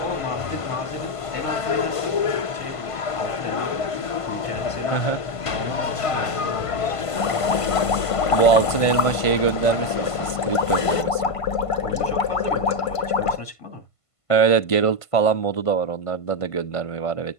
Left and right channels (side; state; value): right; late; 1.5 ms